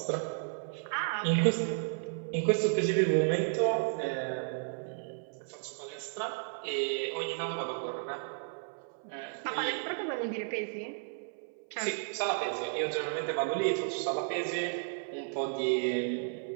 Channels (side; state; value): left; silent; 56 dB below the other